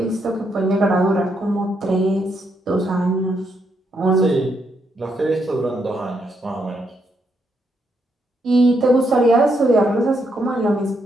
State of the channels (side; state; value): both; normal; correlation 0.78